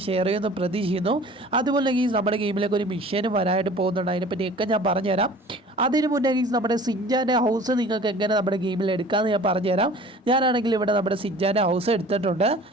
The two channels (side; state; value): both; normal; correlation 0.46